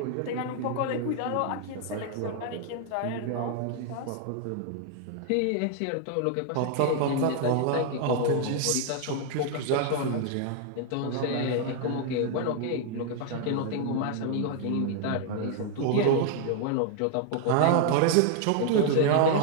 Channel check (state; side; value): different; both; correlation 0.00